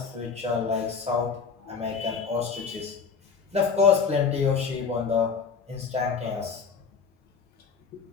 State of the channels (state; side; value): quieter; right; 5.6 dB